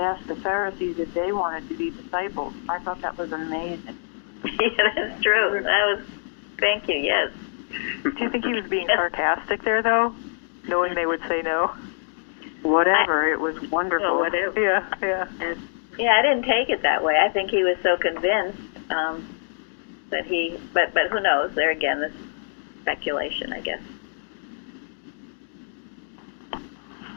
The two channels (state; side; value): silent; right; digital silence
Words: the Pharisees if they wanted to be disciples. I thought that was amazing. Yeah, that's true. Thank you, yes. Do you think he was being sarcastic there, though? Knowing they would say no? Whatever, it was wonderful. Oh, whatever. Yeah. Yeah, I didn't take it that way. I think he was so convinced that he, but who knows? There again, this speculation, I guess.